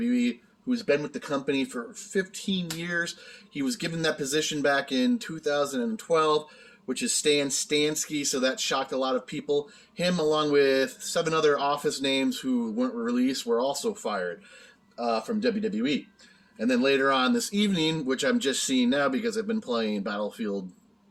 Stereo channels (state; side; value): identical; both; correlation 1.00